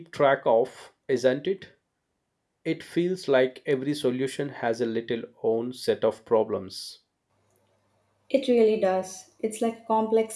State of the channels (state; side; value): identical; both; correlation 1.00